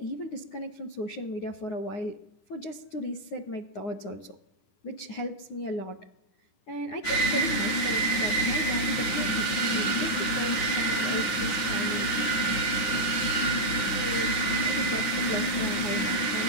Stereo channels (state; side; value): late; right; 10 ms